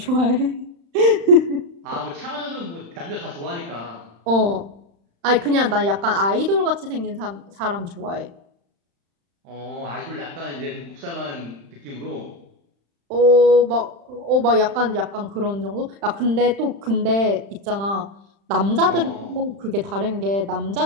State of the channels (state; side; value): late; left; 35 ms